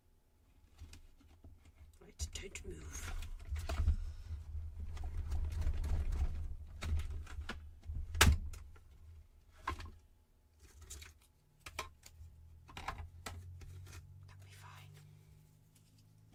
Right, don't move.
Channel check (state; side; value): identical; both; correlation 1.00